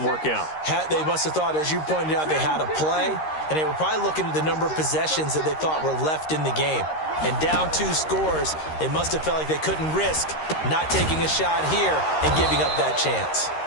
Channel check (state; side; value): late; right; 13 ms